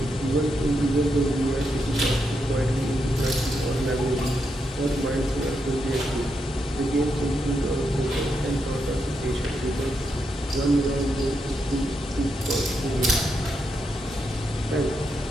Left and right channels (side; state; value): both; normal; correlation 0.82